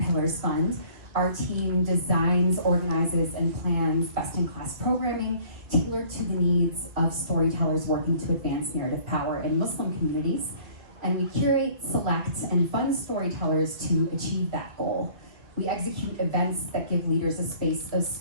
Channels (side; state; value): left; late; 1.7 ms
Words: Fund. Our team designs, organizes, and plans best-in-class programming tailored to the needs of storytellers working to advance narrative power in Muslim communities. And we curate, select, and fund storytellers to achieve that goal. We execute events that give leaders a space of